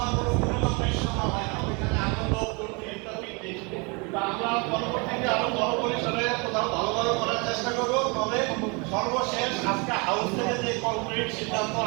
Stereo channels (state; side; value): quieter; left; 30.7 dB